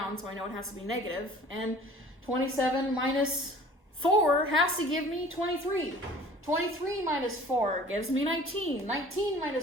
so I know it has to be negative. And 27 minus 4 has to give me 23. 23 minus 4 gives me 19. 19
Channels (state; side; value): normal; both; correlation 0.47